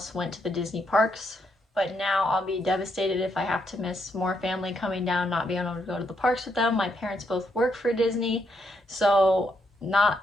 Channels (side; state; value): both; normal; correlation 0.77